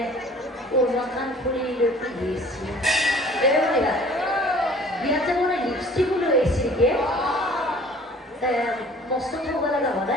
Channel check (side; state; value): both; normal; correlation 0.50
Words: উন্নতমান ফুৰি দিছি এয়া বিয়াতে মানে লিপষ্টিক লৈ আহিছিলকে মস্ত থব লগা